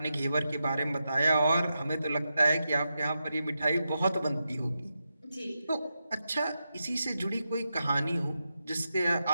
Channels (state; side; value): inverted; both; correlation -0.88